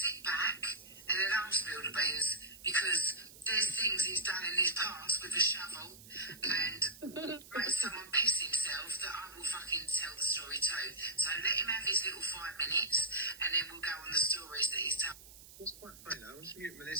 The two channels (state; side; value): noise; right; hiss, 18 dB below the sound